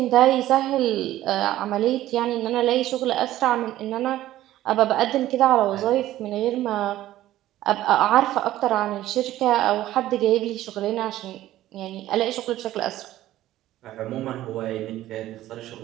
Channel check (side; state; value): left; quieter; 14.4 dB